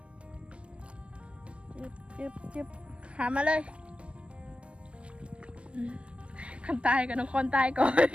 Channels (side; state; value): left; late; 0.060 ms